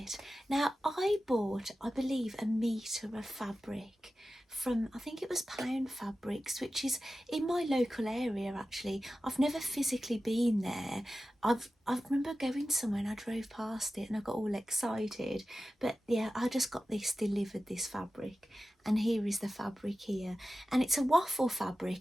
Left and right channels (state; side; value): normal; both; correlation 0.94